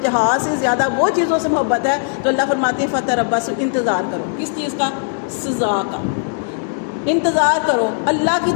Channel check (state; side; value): silent; right; 67 dB below the other